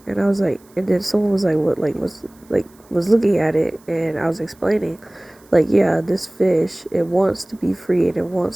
And I was like, and then someone was like, what, was looking at it, and I was explaining, like, yeah, this fish, it wants to be free and it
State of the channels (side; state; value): right; noise; hiss, 30 dB below the sound